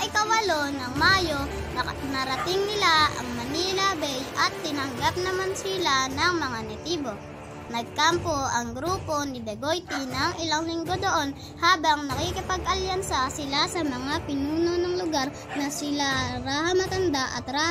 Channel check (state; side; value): identical; both; correlation 1.00